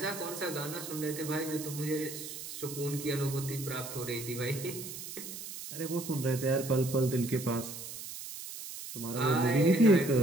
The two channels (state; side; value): noise; right; hiss, 10 dB below the sound